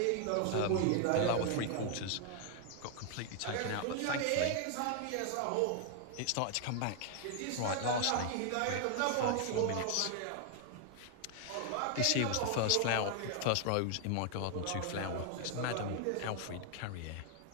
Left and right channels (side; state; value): both; different; correlation 0.00